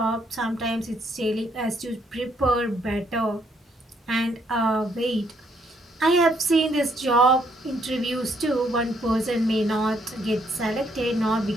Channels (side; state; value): both; normal; correlation 0.71